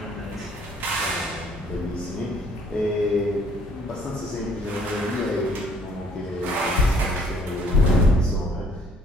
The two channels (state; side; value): normal; both; correlation 0.62